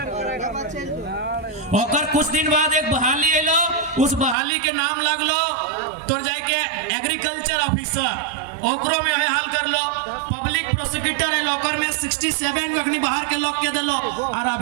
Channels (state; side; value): drops out; left; at 4.4 s